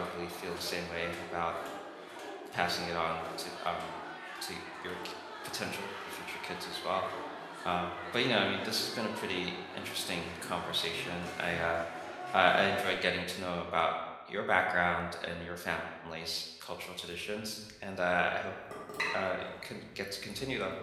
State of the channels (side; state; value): both; identical; correlation 1.00